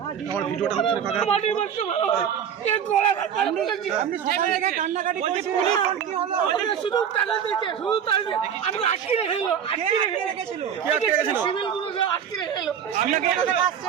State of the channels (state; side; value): quieter; left; 8.3 dB